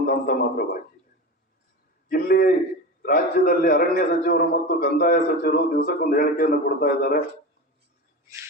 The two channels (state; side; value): normal; both; correlation 0.26